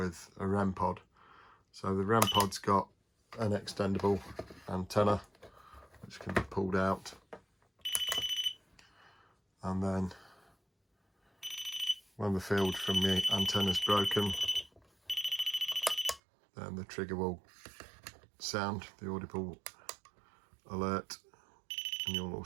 a Rempod. So the Rempod's got an extendable antenna which can be pulled out, and then when the field from the antenna is broken, then the trigger will sound the audible alert, and you'll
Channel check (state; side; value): drops out; left; at 16.2 s